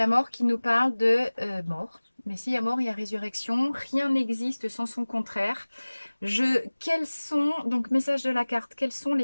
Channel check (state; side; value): inverted; both; correlation -1.00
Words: mort qui nous parle de mort. Mais s'il y a mort, il y a résurrection. Rien n'existe sans son contraire. Quels sont, donc message de la carte, quelles sont